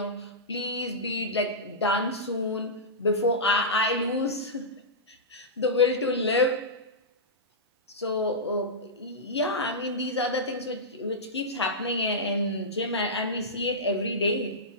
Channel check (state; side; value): normal; both; correlation -0.14